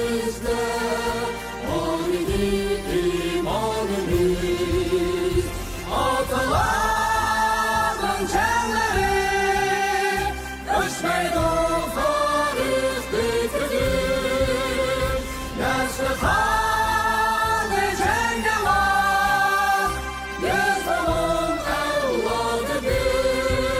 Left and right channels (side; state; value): both; identical; correlation 1.00